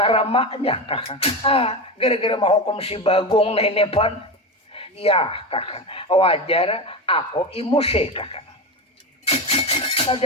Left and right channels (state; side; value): normal; both; correlation 0.20